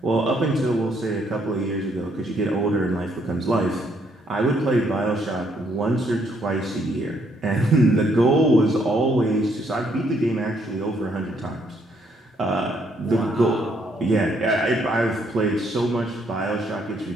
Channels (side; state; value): both; normal; correlation 0.71